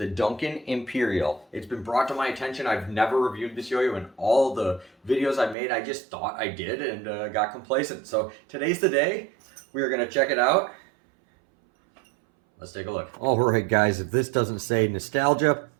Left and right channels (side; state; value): left; drops out; at 5.6 s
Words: Duncan Imperial. It's been brought to my attention. I've never reviewed this yo-yo in all the videos I made. I just thought I did and got complacent. So today's the day. We are going to check it out. Let's take a look. All right, guys, if this doesn't say nostalgia,